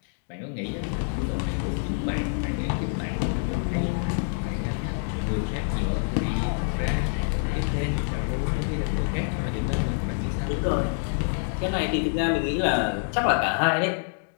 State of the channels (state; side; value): silent; right; digital silence